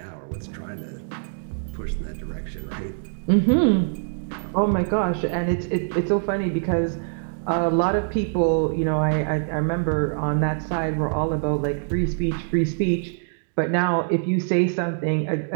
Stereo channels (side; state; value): left; silent; digital silence